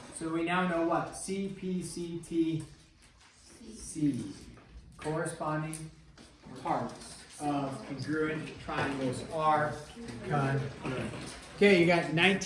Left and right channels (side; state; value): both; identical; correlation 1.00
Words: So we now know what? C, P, C, T, C. corresponding parts of congruent triangles are congruent. Okay, you got